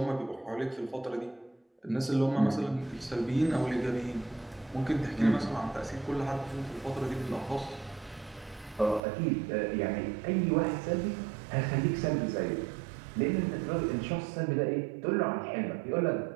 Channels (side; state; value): left; drops out; at 9.0 s